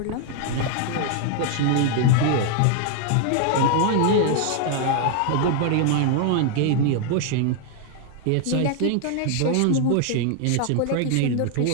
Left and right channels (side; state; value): both; different; correlation 0.00